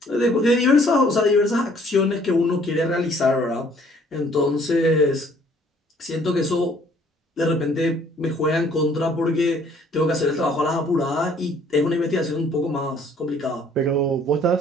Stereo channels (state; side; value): normal; both; correlation 0.59